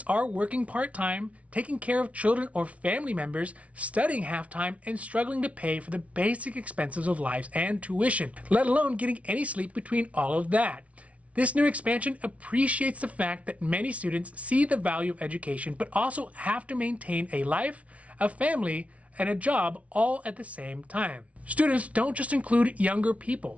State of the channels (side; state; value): left; late; 0.065 ms